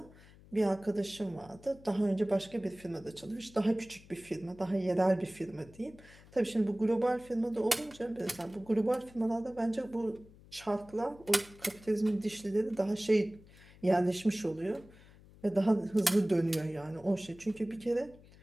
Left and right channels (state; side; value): noise; left; hum, 23 dB below the sound